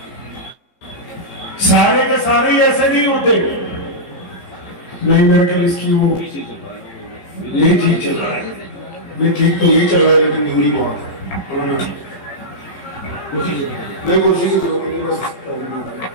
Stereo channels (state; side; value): late; right; 15 ms